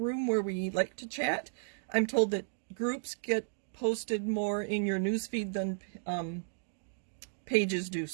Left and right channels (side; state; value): left; silent; digital silence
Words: where we like to chat. I'm told that groups get posted more in your newsfeed than pages do,